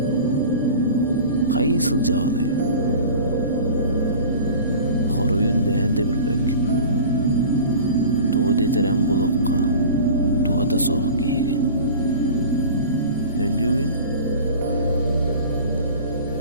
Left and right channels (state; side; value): inverted; both; correlation -0.38